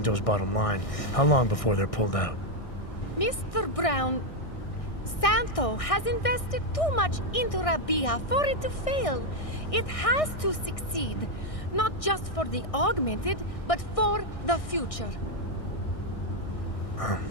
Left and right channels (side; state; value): right; late; 1.6 ms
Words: bottom line, how long before they're pulled out? Mr. Brown, Santo has invested too much into Rabia for it to fail. It has to succeed. Not just for the augmented, but for the future.